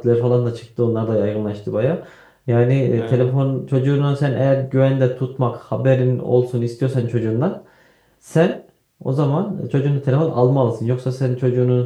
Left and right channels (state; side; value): identical; both; correlation 1.00